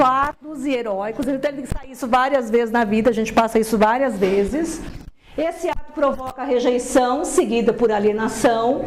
e heróicos. Ele tem que sair isso várias vezes na vida, a gente passa isso várias vezes. Esse ato provoca rejeição, seguida por alienação,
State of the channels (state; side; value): identical; both; correlation 1.00